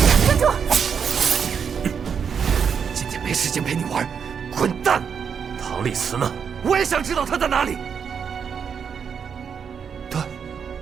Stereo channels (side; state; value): left; quieter; 6.9 dB